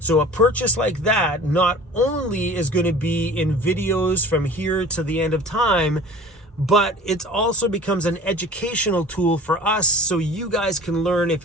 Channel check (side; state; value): both; normal; correlation 0.42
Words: a purchase like that not only is going to be in videos from here to the end of time, but it also becomes an educational tool for us, so you guys can learn